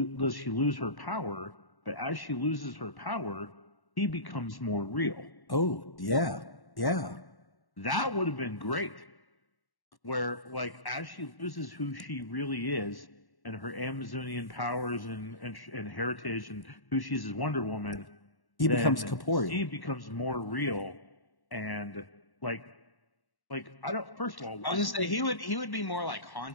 she lose her power, but as she loses her power, he becomes more real. Oh, yeah. That would have been great. Where, like, as she loses who she really is, and her Amazonian powers and heritage, and who she's as Wonder Woman, he becomes corporeal. He becomes more real, and like I don't. First of all, I was gonna say he would be more like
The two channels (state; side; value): late; right; 1.1 ms